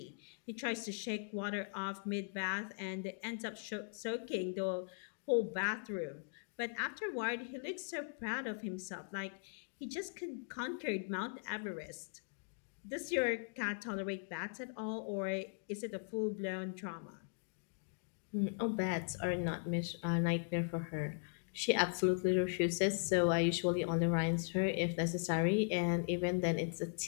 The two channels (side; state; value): right; silent; digital silence